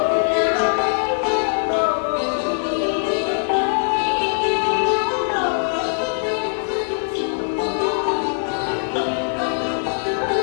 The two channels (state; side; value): silent; right; 64 dB below the other